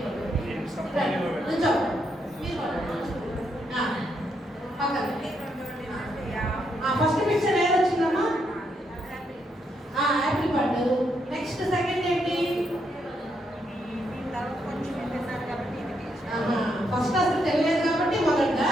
ఫస్ట్ పిక్చర్ ఏది వచ్చిందమ్మా? యాపిల్ పండు. నెక్స్ట్ సెకండ్ ఏంటి? ఫస్ట్ అసలు తెలియదు కాబట్టి మొదట.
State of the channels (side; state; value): both; normal; correlation 0.78